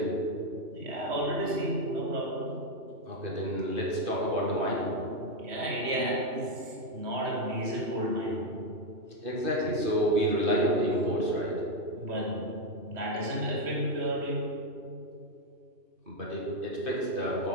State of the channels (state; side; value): late; left; 3.1 ms